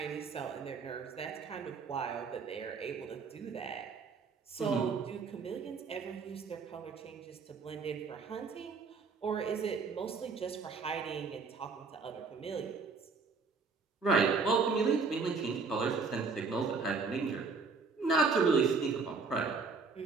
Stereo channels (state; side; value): quieter; left; 4.7 dB